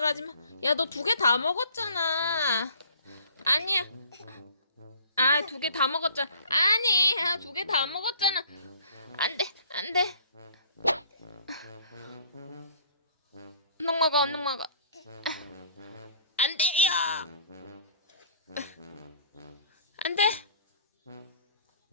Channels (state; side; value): inverted; both; correlation -0.53